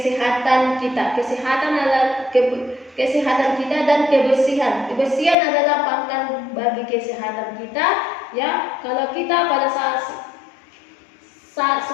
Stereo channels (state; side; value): drops out; right; at 5.4 s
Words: kita. Kesehatan adalah kesehatan kita dan kebersihan. Kebersihan adalah pangkal bagi kesehatan kita, ya. Kalau kita pada saat